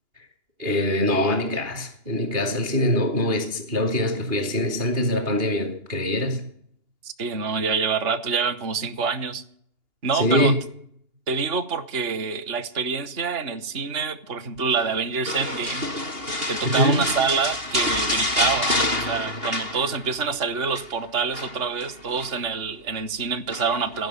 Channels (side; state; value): left; late; 2.8 ms